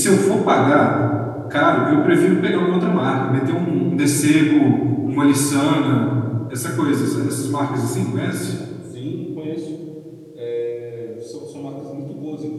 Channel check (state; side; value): identical; both; correlation 1.00